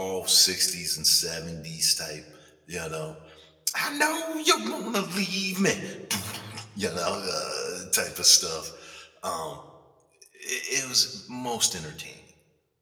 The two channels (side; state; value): both; identical; correlation 1.00